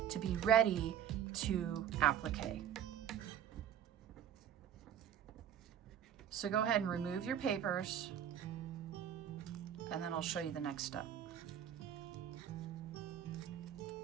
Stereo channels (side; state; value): left; quieter; 9.6 dB